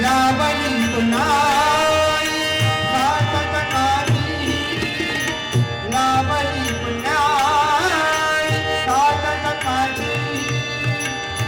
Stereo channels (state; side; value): identical; both; correlation 1.00